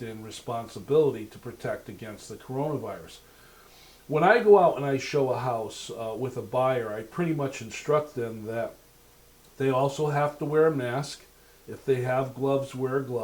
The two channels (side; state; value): both; identical; correlation 1.00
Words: and responsibility to protect against the coronavirus. When I go out and I show a house with a buyer, I pretty much instruct them that they also have to wear a mask. If they have gloves, wear a